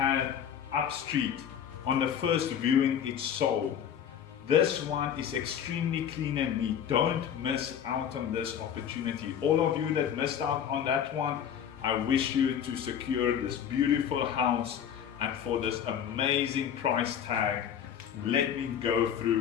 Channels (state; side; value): quieter; right; 8.9 dB